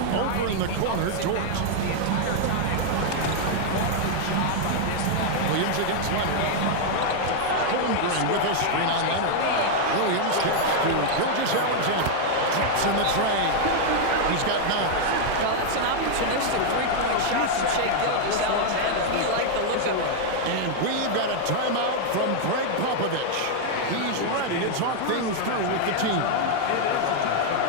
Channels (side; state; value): both; different; correlation 0.00